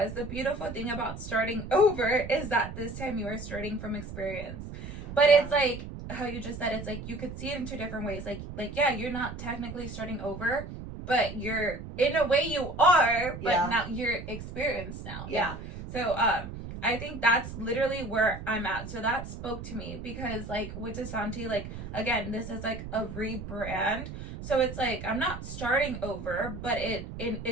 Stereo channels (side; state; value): right; noise; rumble, 10 dB below the sound